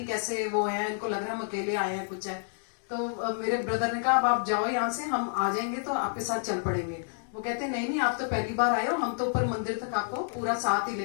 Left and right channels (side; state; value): right; silent; digital silence